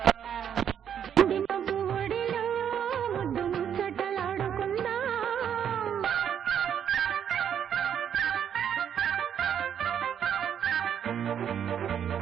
వెండి మబ్బు ఒడిలో ముద్దు ముచ్చటలాడుకుందా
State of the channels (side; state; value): left; quieter; 8.8 dB